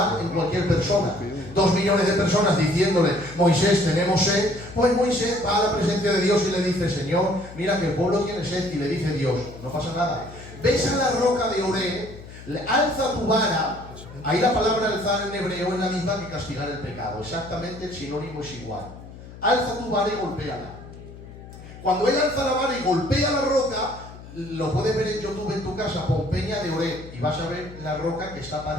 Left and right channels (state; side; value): noise; left; hum, 16 dB below the sound